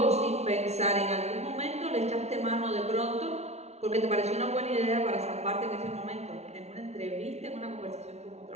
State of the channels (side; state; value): left; late; 0.31 ms